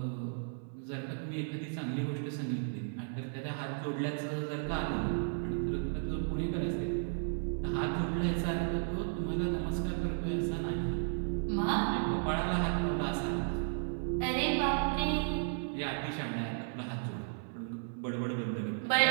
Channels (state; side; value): silent; left; 55 dB below the other